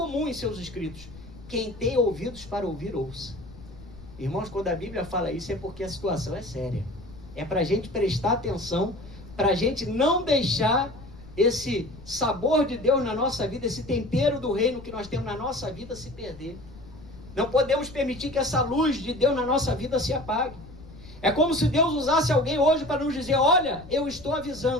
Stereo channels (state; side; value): noise; left; rumble, 18 dB below the sound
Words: em seus escritos: quem tem ouvidos para ouvir, ouça. Irmãos, quando a Bíblia fala isso é porque a situação é séria. É para a gente prestar atenção, para a gente não deixar esse sabor de Deus na nossa vida, esse tempero do reino que nós temos na nossa vida se perder. Não podemos permitir que essa luz de Deus na nossa vida se apague. É como se Deus usasse alguém hoje para nos dizer: olha, eu estou